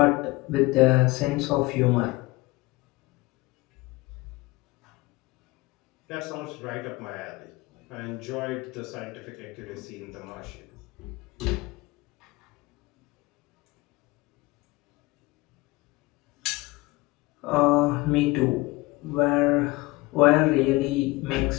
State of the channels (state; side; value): quieter; right; 22.1 dB